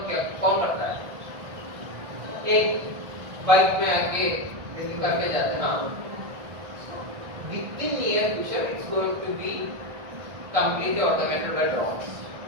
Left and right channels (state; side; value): late; left; 1.6 ms